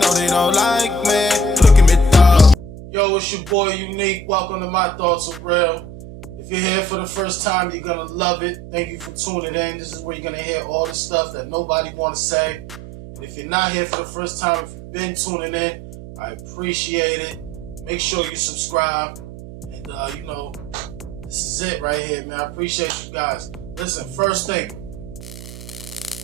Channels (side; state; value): right; noise; hum, 14 dB below the sound